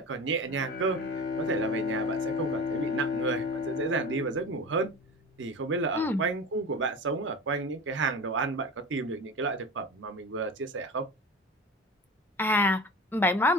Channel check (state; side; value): normal; both; correlation 0.32